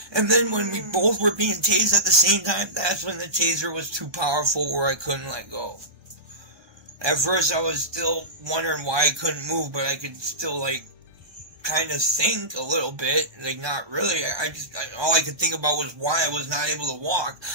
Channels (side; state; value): left; late; 1.2 ms